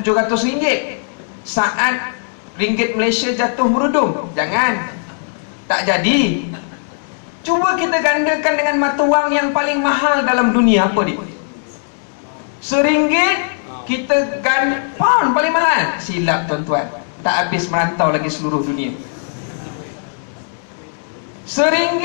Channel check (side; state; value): right; silent; digital silence